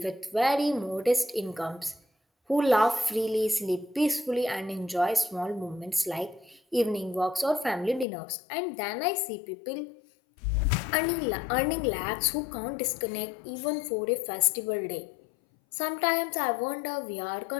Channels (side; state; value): right; drops out; at 8.1 s